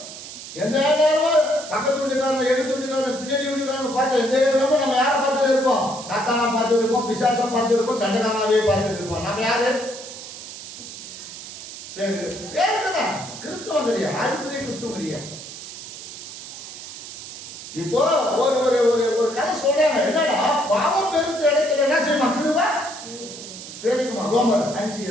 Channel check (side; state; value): right; noise; hiss, 12 dB below the sound